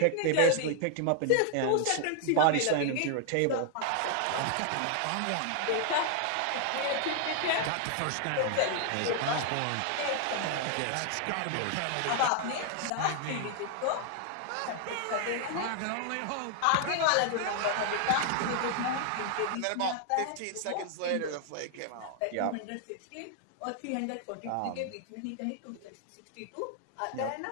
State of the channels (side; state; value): both; different; correlation 0.00